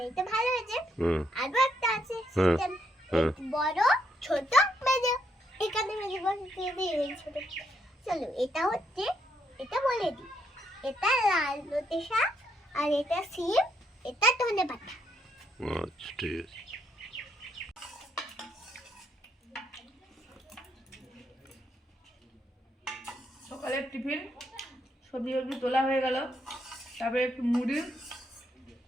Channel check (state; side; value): normal; both; correlation 0.75